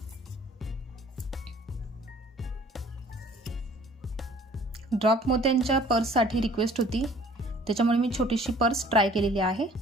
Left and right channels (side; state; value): both; normal; correlation 0.53